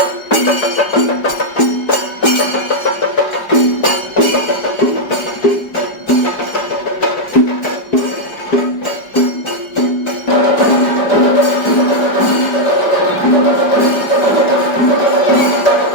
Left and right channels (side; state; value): right; late; 5.0 ms